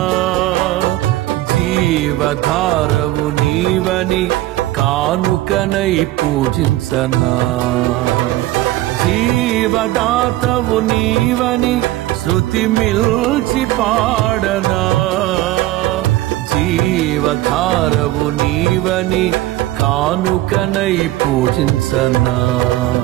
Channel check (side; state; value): left; quieter; 16.2 dB